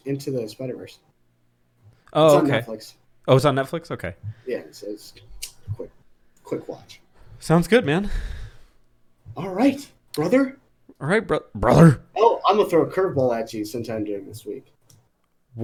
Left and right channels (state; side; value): identical; both; correlation 1.00